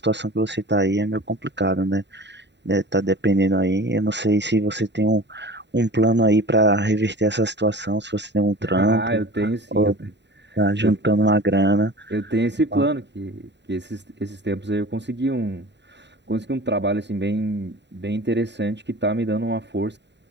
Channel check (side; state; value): left; late; 0.51 ms